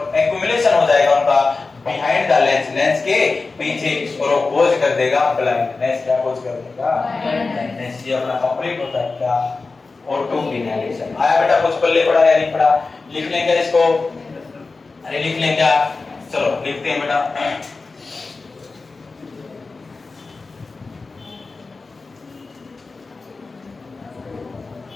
एक्यूमुलेशन हो जाएगा उनका बिहाइंड द लेंस, लेंस के पीछे, और वो खोज कर देगा ब्लाइंडनेस। क्या खोज कर देगा? ब्लाइंडनेस। ये अपना कंप्लीट होता है क्या? Auto inhalation. आया बेटा? कुछ पल्ले पड़ा या नहीं पड़ा? लिख लेंगे इसको? अरे लिख लेंगे क्या? चलो लिखते हैं बेटा।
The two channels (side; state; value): right; quieter; 3.9 dB